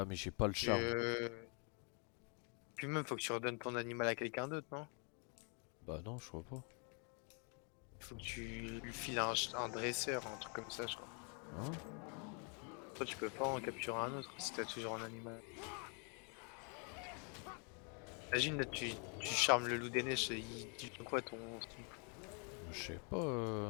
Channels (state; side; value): quieter; right; 37.7 dB